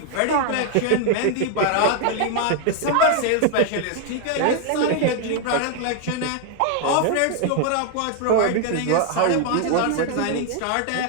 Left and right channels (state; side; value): different; both; correlation 0.00